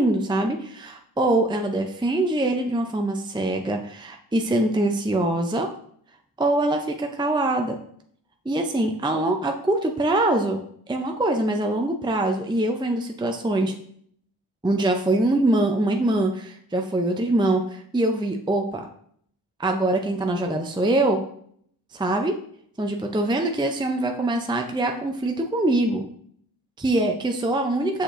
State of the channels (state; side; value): normal; both; correlation 0.59